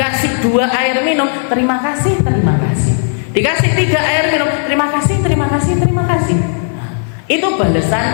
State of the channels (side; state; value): right; silent; 65 dB below the other